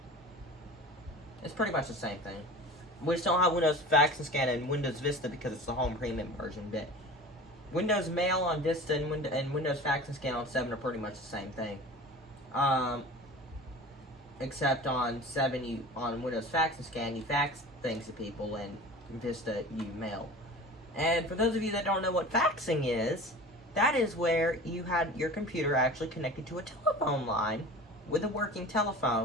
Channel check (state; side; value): normal; both; correlation 0.37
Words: It's pretty much the same thing. We just don't have Windows Fax and Scan and Windows Vista because it's the Home Premium version. But Windows Mail on Vista and Windows Fax and Scan on 7 are pretty much the same thing. Except on 7, on Windows Fax and Scan, you fax things to people, and Vista, you mail. And for those of you that don't know what faxing is, that is where you had your computer actually connected to a telephone line with a working